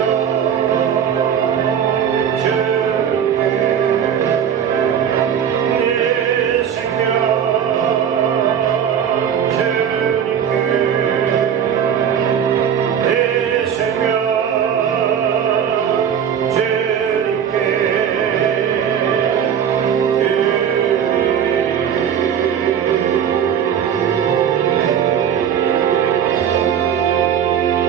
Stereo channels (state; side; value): quieter; left; 8.5 dB